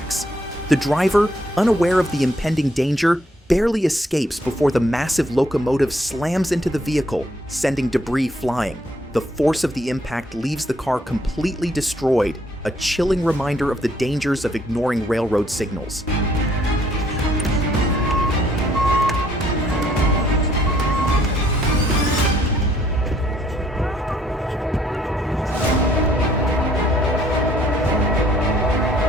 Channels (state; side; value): normal; both; correlation 0.66